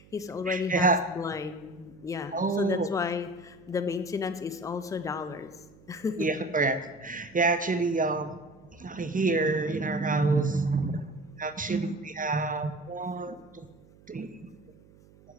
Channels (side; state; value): right; noise; hum, 25 dB below the sound